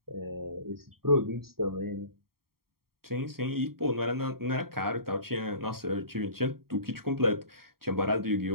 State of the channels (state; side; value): late; left; 0.94 ms